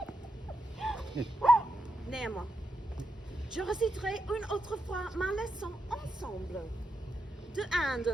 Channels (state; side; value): normal; both; correlation 0.85